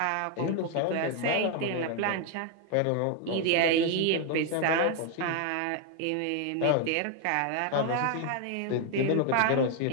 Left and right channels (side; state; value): both; different; correlation 0.01